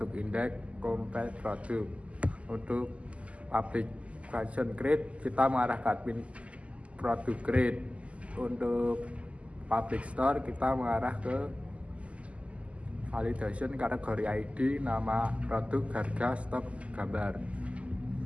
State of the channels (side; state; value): left; late; 0.062 ms